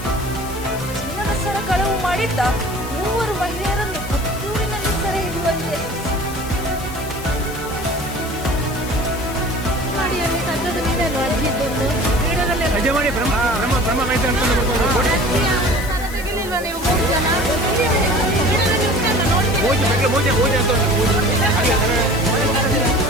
ಚಿನ್ನದ ಸರ ಕಳವು ಮಾಡಿದ್ದ 3 ಮಹಿಳೆಯರನ್ನು ಪುತ್ತೂರಿನಲ್ಲಿ ಸೆರೆ ಹಿಡಿಯುವಲ್ಲಿ ಯಶಸ್ಸು.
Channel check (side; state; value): left; noise; hiss, 14 dB below the sound